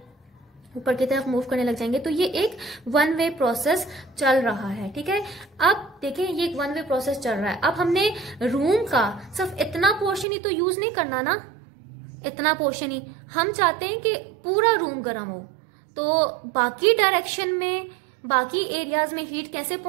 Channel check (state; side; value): drops out; left; at 10.2 s